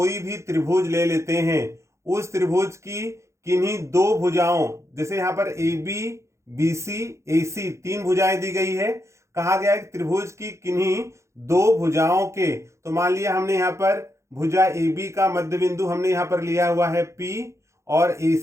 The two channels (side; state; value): left; late; 0.14 ms